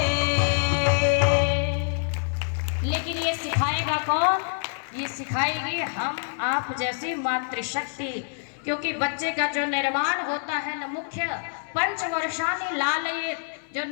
लेकिन ये सिखाएगा कौन? ये सिखाएगी हम आप जैसी मातृशक्ति। क्योंकि बच्चे का जो निर्माण होता है न मुख्य पंचवर्षानी लालयित, जो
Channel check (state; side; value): silent; right; 61 dB below the other